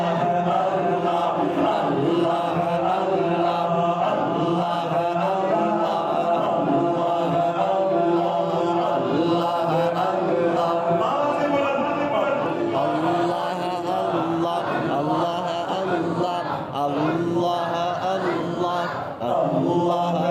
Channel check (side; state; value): both; identical; correlation 1.00